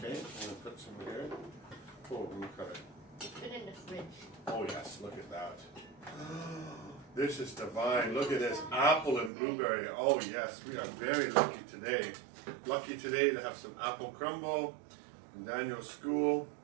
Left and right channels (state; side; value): drops out; left; at 9.3 s